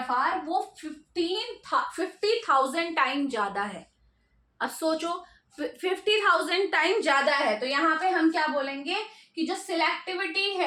वो 50,000 टाइम ज्यादा है। अब सोचो 50,000 टाइम ज्यादा है तो यहाँ पे हम क्या बोलेंगे कि जो सिलेक्टिविटी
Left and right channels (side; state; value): both; identical; correlation 1.00